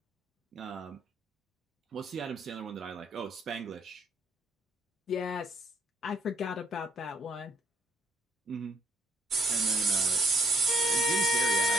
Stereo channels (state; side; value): normal; both; correlation 0.69